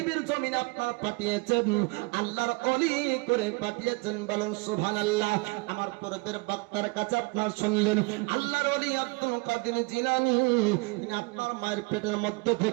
জমিনে আপনার পাঠিয়েছেন, আল্লাহর ওলি করে পাঠিয়েছেন। বলুন সুবহানাল্লাহ। আমার পূর্বের বক্তার কাছে আপনার শুনলেন আল্লাহর ওলি আব্দুল কাদের জিলানী তিনি আপনার মায়ের পেটের মধ্যে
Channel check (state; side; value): quieter; left; 27.6 dB